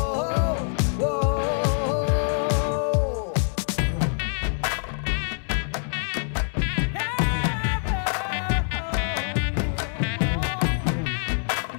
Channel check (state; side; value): silent; right; digital silence